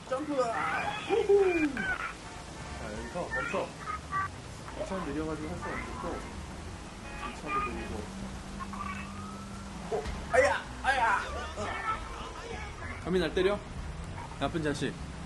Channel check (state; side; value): identical; both; correlation 1.00